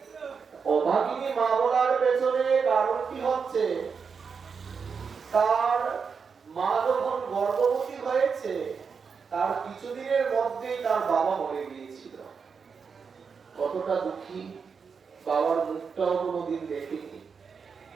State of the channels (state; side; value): quieter; left; 5.8 dB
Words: অভাগিনী মা বলার পেছনে কারণটি হচ্ছে, তার মা যখন গর্ভবতী হয়েছে, তার কিছুদিনের মধ্যেই তার বাবা মরে গিয়েছিল। কতটা দুঃখী, বাবার মুখটাও কোনোদিন দেখেনি।